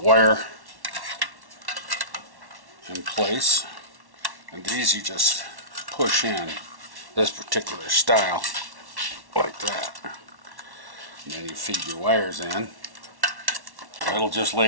in place. And these you just push in this particular style like that. And then you feed your wires in. It'll just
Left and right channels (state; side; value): late; left; 1.1 ms